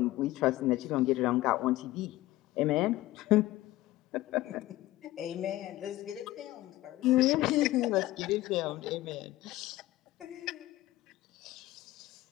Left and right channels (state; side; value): quieter; right; 16.9 dB